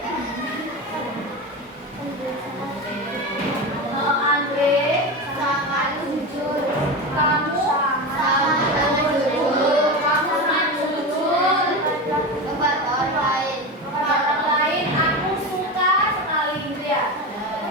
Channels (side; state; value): both; normal; correlation 0.22